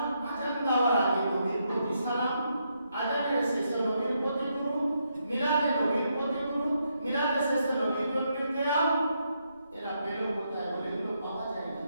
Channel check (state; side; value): inverted; both; correlation -0.79